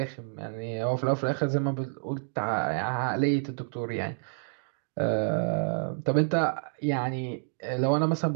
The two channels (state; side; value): silent; left; digital silence